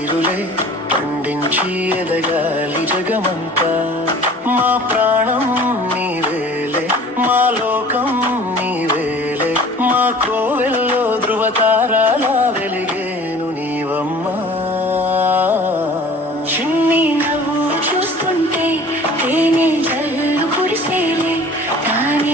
పండించి ఎదగాలి జగమంతా మా ప్రాణం నీవేలే మా లోకం నీవేలే మా కోవెల్లో ధృవతారాలా వెలిగేను నీవమ్మా చిన్ని నవ్వు చూస్తుంటే తేనె జల్లు కురిసేలే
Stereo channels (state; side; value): normal; both; correlation 0.46